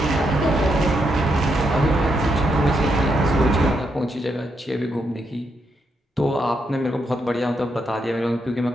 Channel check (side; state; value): both; normal; correlation 0.80